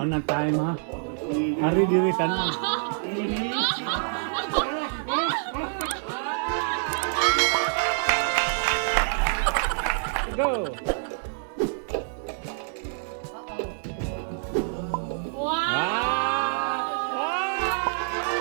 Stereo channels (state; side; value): silent; left; digital silence